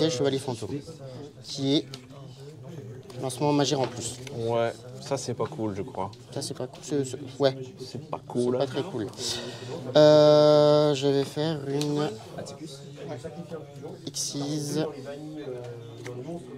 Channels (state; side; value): identical; both; correlation 1.00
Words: Chevalier Fantôme. Qui est lancement Magie en plus. Ouais. Ça c'est pas cool, je crois. Ça, c'est pas cool. Ouais, C'est pas c'est cool. pas très cool. Je vais faire une Xyz